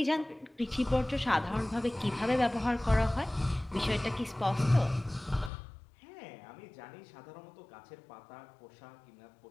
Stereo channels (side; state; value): right; drops out; at 5.5 s